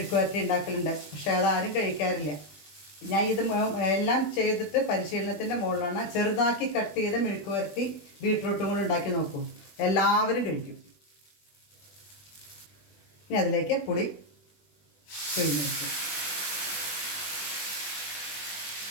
ഉണ്ടാക്കലുണ്ട്. പക്ഷേ അതാരും കഴിക്കാറില്ല. ഞാൻ ഇത് എല്ലാം ചെയ്തിട്ട് പരിശീലനത്തിൻ്റെ മുകളിലാണ്. ചെറുതാക്കി കട്ട് ചെയ്ത് മെഴുക്കുവരട്ടി ബീട്രൂട്ടും കൂടെ ഉണ്ടാക്കി നോക്കൂ, എല്ലാവരും കഴിക്കും. ഇനി അതിലേക്ക് പുളി പിഴിഞ്ഞെടുക്കും.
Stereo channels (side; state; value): right; late; 20 ms